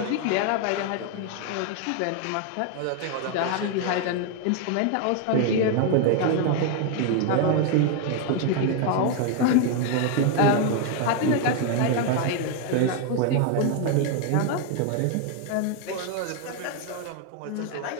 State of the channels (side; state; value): both; different; correlation 0.01